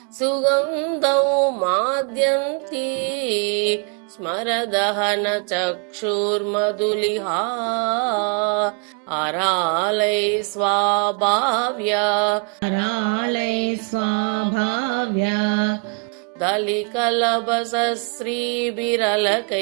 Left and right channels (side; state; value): left; quieter; 38.0 dB